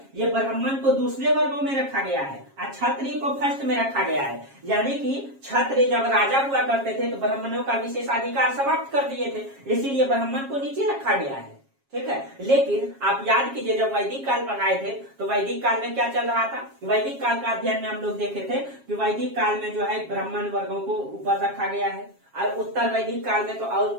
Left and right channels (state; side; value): late; left; 7.3 ms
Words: ये ब्राह्मण को दूसरे वर्गों में रखा गया है और क्षत्रिय को फर्स्ट में रखा गया है। यानी कि क्षत्रिय जब राजा हुआ करते थे तो ब्राह्मणों का विशेषाधिकार समाप्त कर दिए थे, इसीलिए ब्राह्मण को नीचे रखा गया है, ठीक है। लेकिन आप याद कीजिए, जब वैदिक काल पढ़ाए थे तो वैदिक काल में क्या चल रहा था, वैदिक काल का अध्ययन में हम लोग देखे थे कि वैदिक काल में जो है ब्राह्मण वर्गों को ऊपर रखा गया है, और उत्तर वैदिक काल में तो